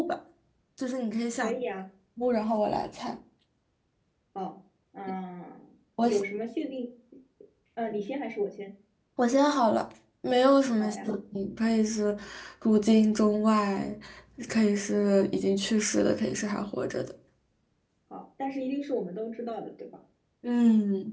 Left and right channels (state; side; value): identical; both; correlation 1.00